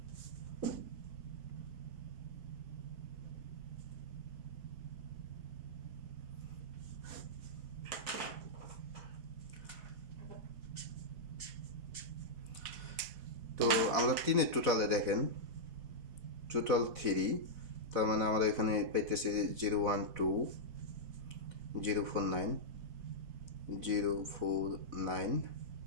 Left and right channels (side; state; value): left; late; 4.0 ms